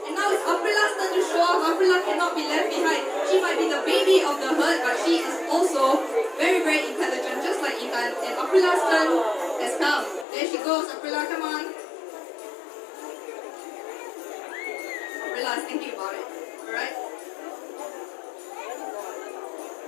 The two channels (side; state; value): right; drops out; at 10.2 s